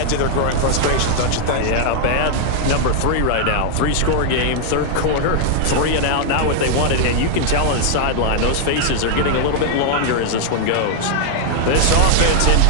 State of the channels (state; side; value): different; both; correlation 0.00